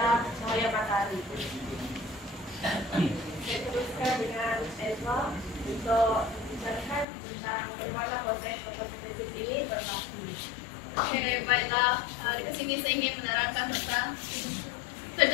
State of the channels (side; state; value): right; drops out; at 7.1 s